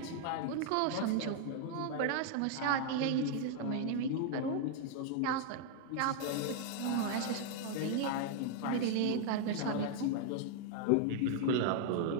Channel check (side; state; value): both; different; correlation 0.00